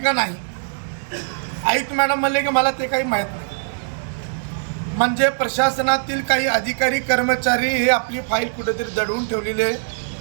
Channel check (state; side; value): silent; left; digital silence